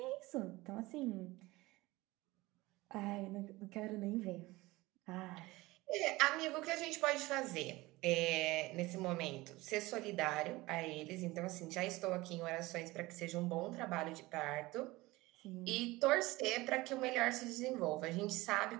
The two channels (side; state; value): left; quieter; 20.4 dB